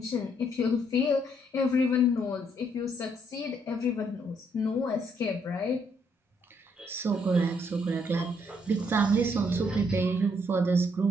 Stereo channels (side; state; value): both; normal; correlation 0.71